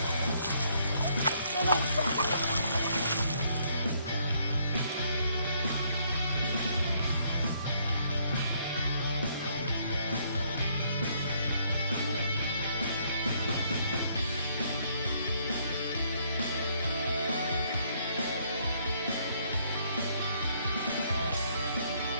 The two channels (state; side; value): inverted; both; correlation -0.68